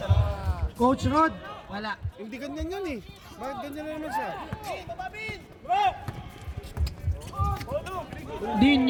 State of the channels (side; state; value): both; identical; correlation 1.00